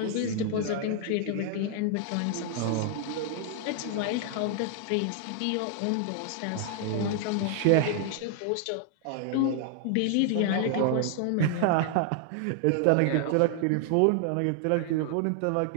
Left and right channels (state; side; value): different; both; correlation 0.00